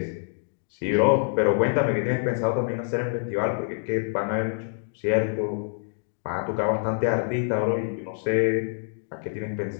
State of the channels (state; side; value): silent; right; digital silence